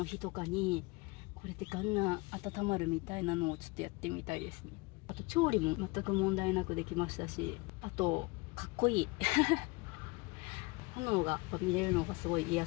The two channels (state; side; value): quieter; right; 25.0 dB